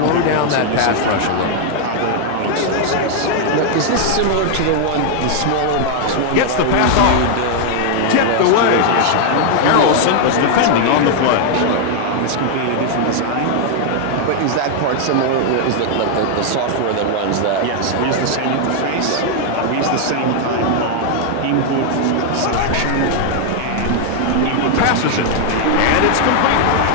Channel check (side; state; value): both; different; correlation 0.00